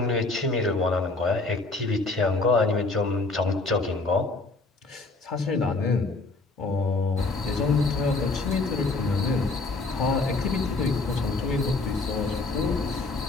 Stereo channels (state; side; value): quieter; right; 3.5 dB